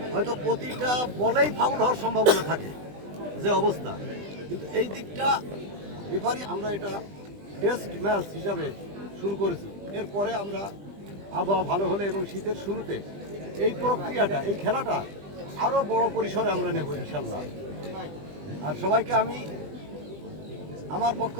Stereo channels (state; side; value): late; left; 20 ms